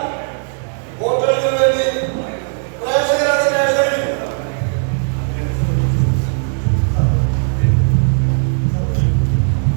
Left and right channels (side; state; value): left; silent; 67 dB below the other